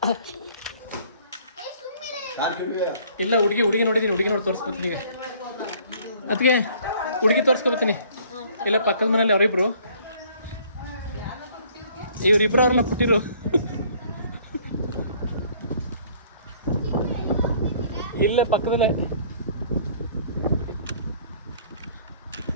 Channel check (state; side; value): inverted; both; correlation -0.57